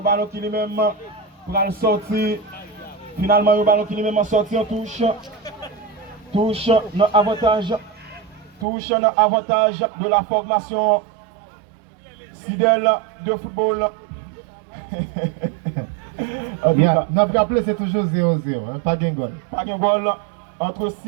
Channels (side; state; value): left; drops out; at 8.7 s